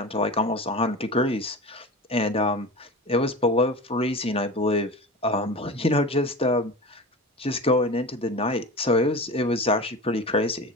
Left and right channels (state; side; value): normal; both; correlation 0.31